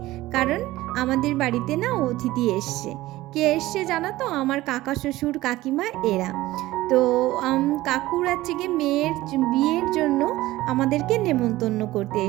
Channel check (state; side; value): quieter; left; 17.3 dB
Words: কারণ আমাদের বাড়িতে না অতিথি এসছে। কে এসছে জানো তো? আমার কাকা শ্বশুর কাকিমা এরা। তো কাকুর হচ্ছে গিয়ে মেয়ের বিয়ের জন্য আমাদেরকে নেমন্তন্ন করতে